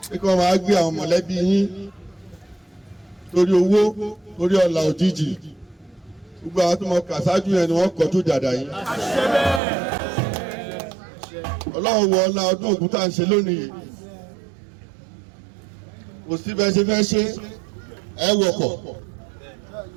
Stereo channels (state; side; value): drops out; left; at 9.6 s